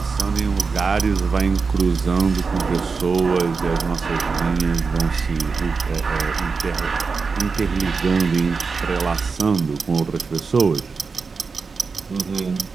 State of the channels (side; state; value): left; quieter; 4.8 dB